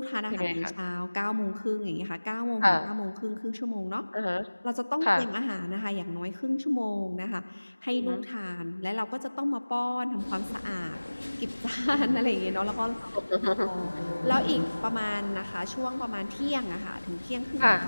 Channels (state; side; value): inverted; both; correlation -1.00